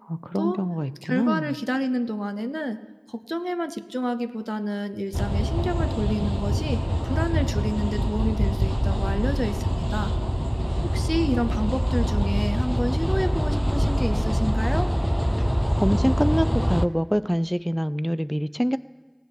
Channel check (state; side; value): identical; both; correlation 1.00